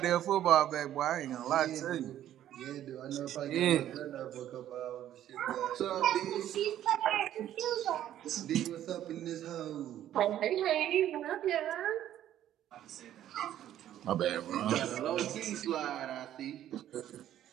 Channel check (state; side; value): quieter; left; 11.8 dB